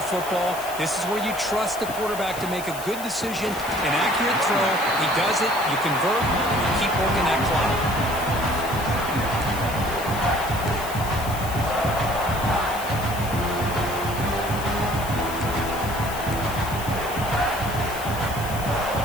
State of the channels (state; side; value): noise; left; hiss, 12 dB below the sound